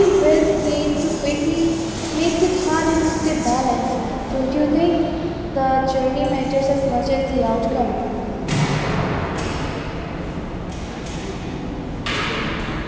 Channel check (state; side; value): identical; both; correlation 1.00